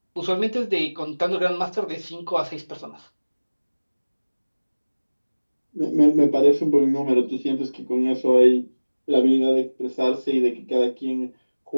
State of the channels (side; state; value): both; inverted; correlation -1.00